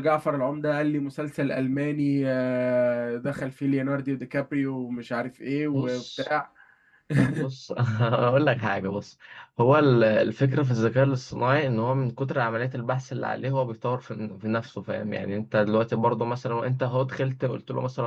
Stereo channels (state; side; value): identical; both; correlation 1.00